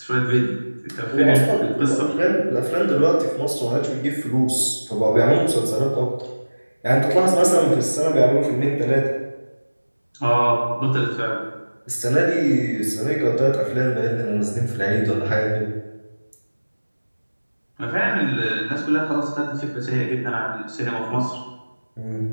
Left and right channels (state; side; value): inverted; both; correlation -1.00